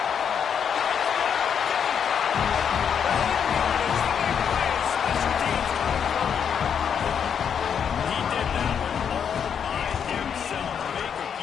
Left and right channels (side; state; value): right; quieter; 7.6 dB